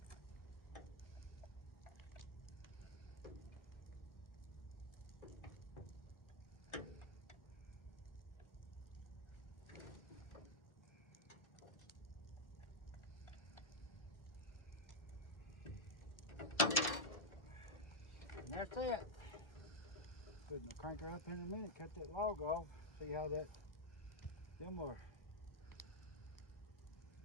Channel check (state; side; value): late; right; 1.3 ms